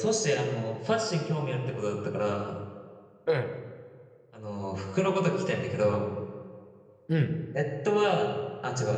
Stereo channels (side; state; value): both; identical; correlation 1.00